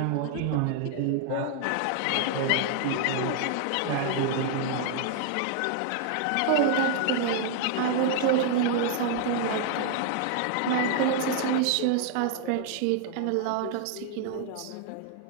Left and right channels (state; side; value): different; both; correlation 0.00